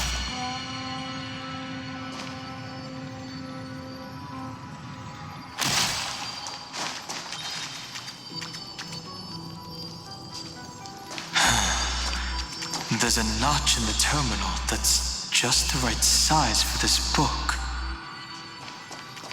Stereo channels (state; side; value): identical; both; correlation 1.00